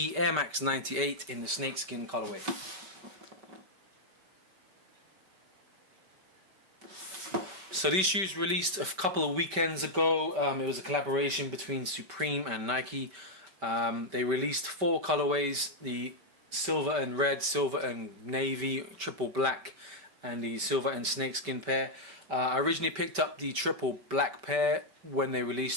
Air Max 98 in the snakeskin colorway. So these shoes released a couple of weekends ago. It was a collaboration between Supreme and Nike. They released 4 colorways: the silver and red, silver and navy, triple black, and the silver and snakeskin pair. I originally picked up the triple black pair when they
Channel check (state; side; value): late; left; 5.2 ms